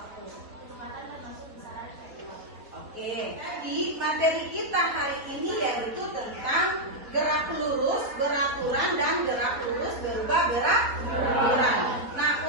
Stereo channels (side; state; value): left; late; 3.9 ms